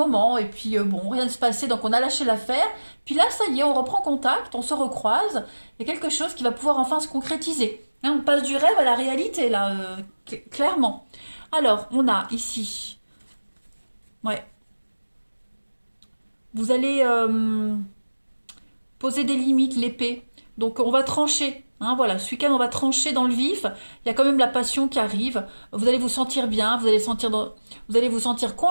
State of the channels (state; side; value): inverted; both; correlation -1.00